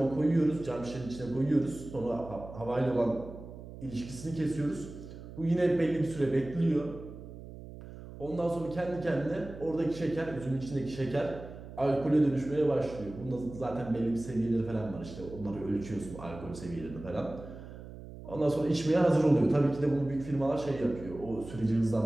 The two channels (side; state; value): right; noise; hum, 14 dB below the sound